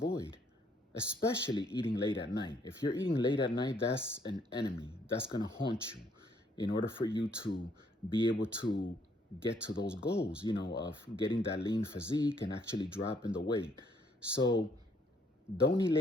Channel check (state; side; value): normal; both; correlation 0.68